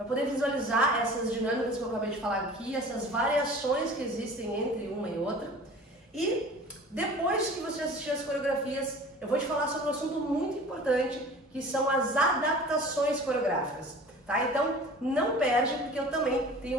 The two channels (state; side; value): normal; both; correlation 0.43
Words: poder visualizar essas dinâmicas que eu acabei de falar aqui, essas variações que existem entre uma e outra. E depois que você assistir as coreografias, eu vou te falar sobre um assunto muito importante, que são as adaptações coreográficas, tá? Então não perde, porque eu também tenho